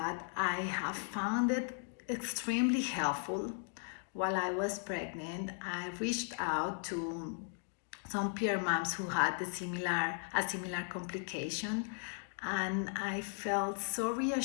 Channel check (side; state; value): right; silent; 53 dB below the other